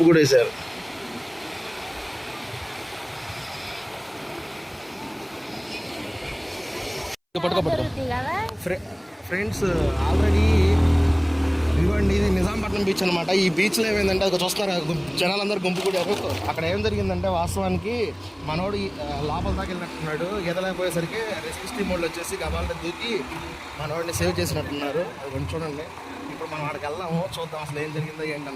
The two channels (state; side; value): identical; both; correlation 1.00